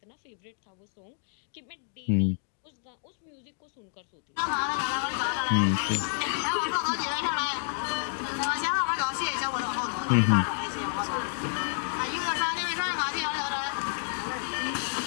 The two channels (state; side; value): silent; right; digital silence